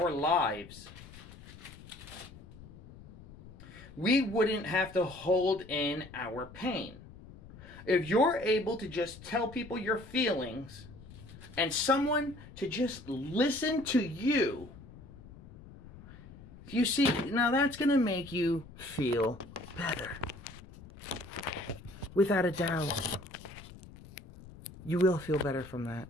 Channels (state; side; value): noise; left; rumble, 18 dB below the sound